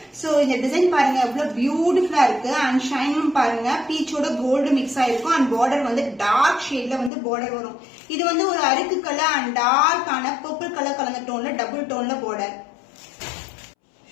சோ இந்த டிசைன் பாருங்க எவ்வளவு பியூட்டிஃபுல்லா இருக்கு. அண்ட் ஷைனும் பாருங்க பீச்சோட கோல்டு மிக்ஸ் ஆயிருக்கும். அண்ட் பார்டர் வந்து டார்க் ஷேட்ல வந்து பார்டர் வரும். இது வந்து ஒரு அருக்கு கலர் அண்ட் டார்க்கான பர்பிள் கலர் கலந்த டோன்ல டபுள் டோன்ல பார்டர்.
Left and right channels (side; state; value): right; drops out; at 7.1 s